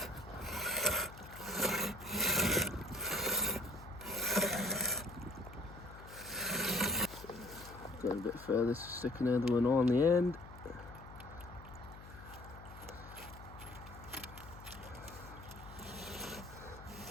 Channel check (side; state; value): left; noise; hum, 16 dB below the sound